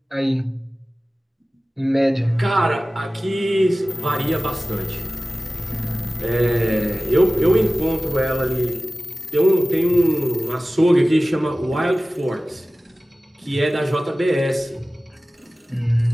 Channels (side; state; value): both; normal; correlation 0.97